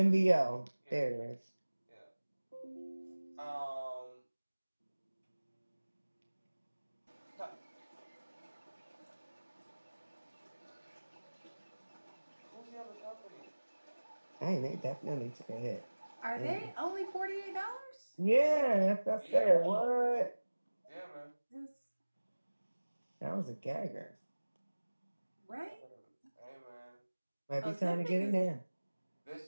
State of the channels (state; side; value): inverted; both; correlation -1.00